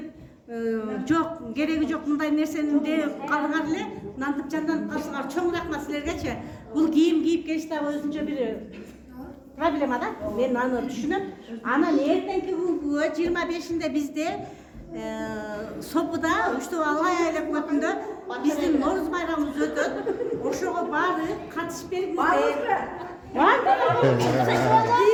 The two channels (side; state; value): both; identical; correlation 1.00